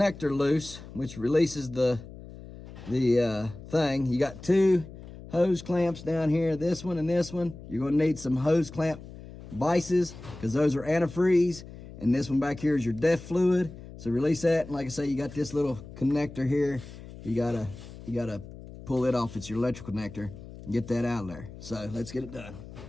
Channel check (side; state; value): left; noise; hum, 15 dB below the sound